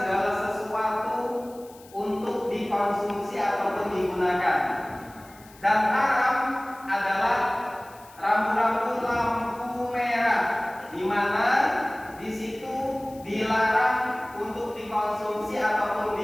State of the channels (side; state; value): left; noise; hiss, 24 dB below the sound